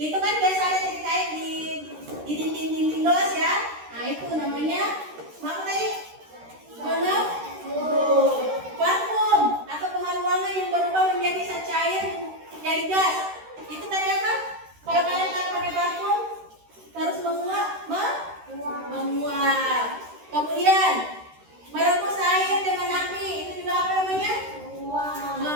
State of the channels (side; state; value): left; late; 13 ms